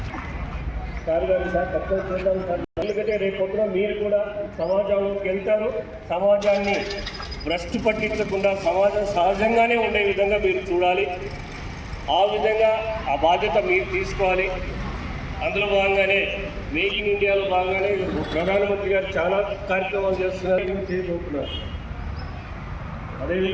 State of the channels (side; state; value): both; identical; correlation 1.00